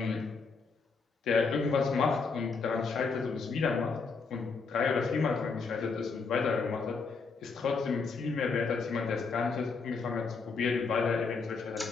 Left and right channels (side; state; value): right; quieter; 4.7 dB